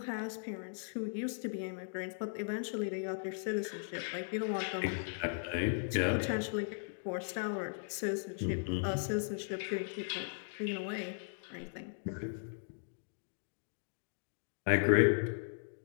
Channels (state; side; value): silent; right; digital silence